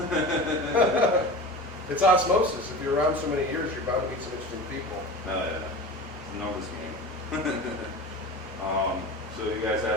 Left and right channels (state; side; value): normal; both; correlation 0.32